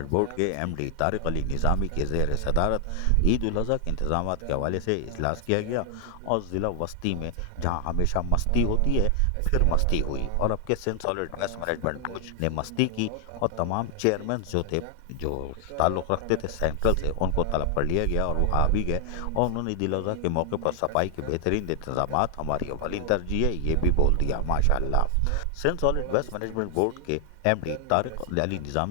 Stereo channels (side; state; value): both; different; correlation 0.00